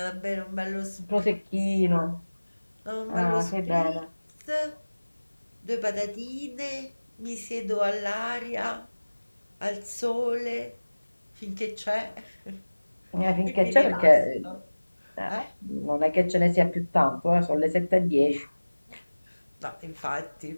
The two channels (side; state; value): both; inverted; correlation -1.00